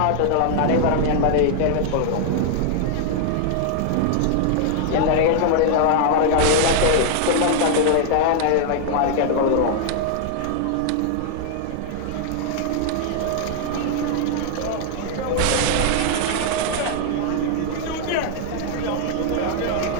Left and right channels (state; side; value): different; both; correlation -0.01